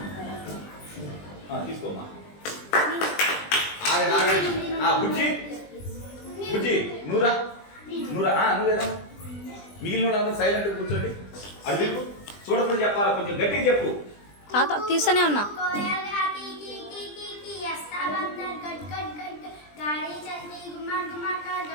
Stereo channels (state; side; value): late; right; 20 ms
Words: తీసుకోమ్మా బుజ్జి బుజ్జి నూరా నూరా నువ్వేదా మిగిలిన వాళ్ళందరూ సైలెంట్ కూర్చోండి. అడుగు చూడకుండా చెప్పాలా, కొంచెం గట్టిగా చెప్పు. తాత తీస్తూనే ఉన్నా.